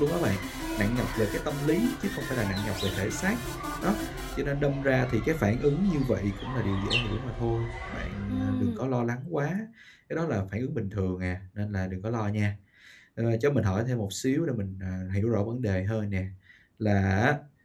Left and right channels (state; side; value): identical; both; correlation 1.00